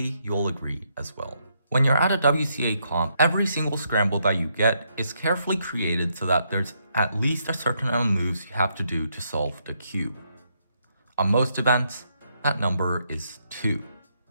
you'll agree as well. When you're at a WCA comp, every single scramble that you get is carefully created so that there's at least a certain amount of moves you have to do to solve the cube. On most events, that number is 2.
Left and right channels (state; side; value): inverted; both; correlation -0.76